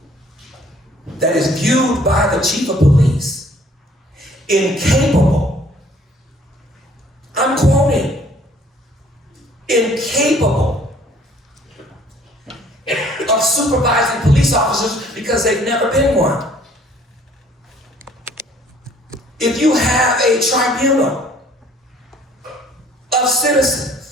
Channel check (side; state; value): both; normal; correlation 0.58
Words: that is viewed by the chief of police incapable, I'm quoting, incapable of supervising police officers because they've never been one. if you have a tribunal of